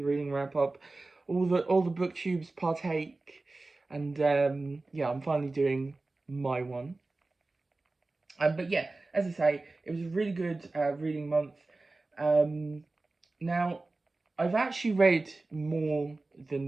reading wrap up. All the booktubes partake, and yeah, I'm finally doing my one. But yeah, as I say, it was a really good reading month. Um, Now, I've actually read more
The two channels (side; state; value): left; quieter; 3.3 dB